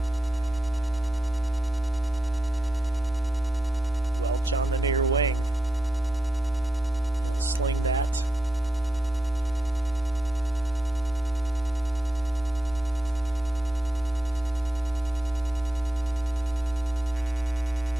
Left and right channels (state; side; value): normal; both; correlation 0.87